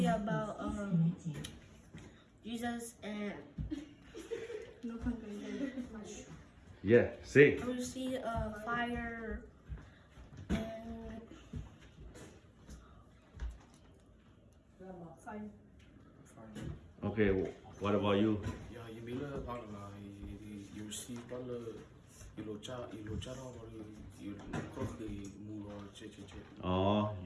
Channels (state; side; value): identical; both; correlation 1.00